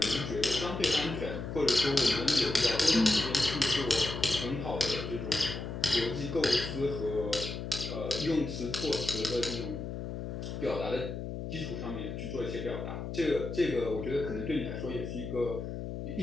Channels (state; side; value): noise; left; hum, 6 dB below the sound